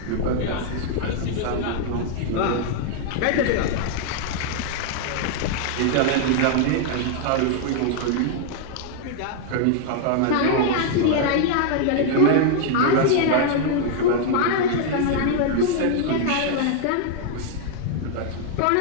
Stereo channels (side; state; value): both; different; correlation 0.00